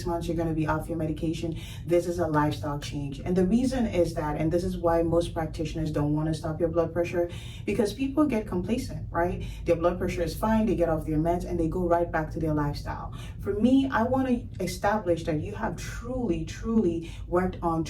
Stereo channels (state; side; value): identical; both; correlation 1.00